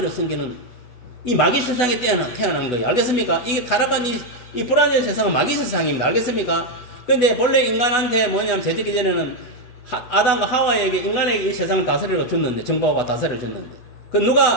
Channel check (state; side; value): late; right; 8.1 ms